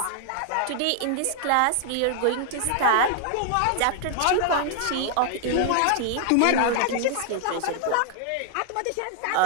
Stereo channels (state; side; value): different; both; correlation 0.00